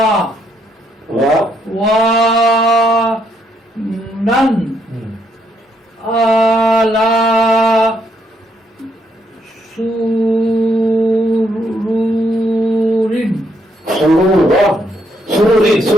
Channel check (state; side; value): normal; both; correlation 0.74